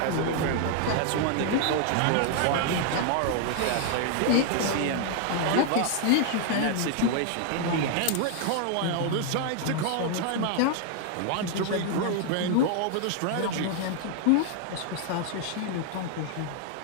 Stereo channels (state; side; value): different; both; correlation 0.00